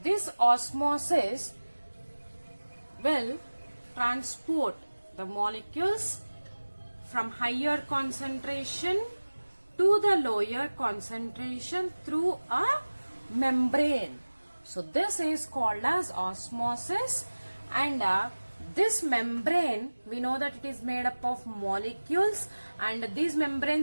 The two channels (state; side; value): inverted; both; correlation -1.00